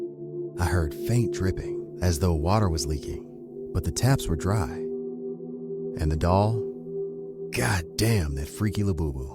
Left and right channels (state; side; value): identical; both; correlation 1.00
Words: I heard faint dripping, as though water was leaking, but the taps were dry. And the doll? God damn that freaky